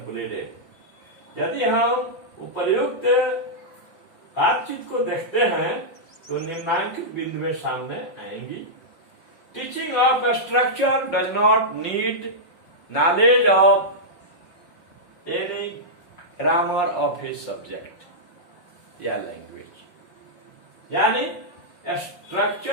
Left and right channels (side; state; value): right; late; 5.6 ms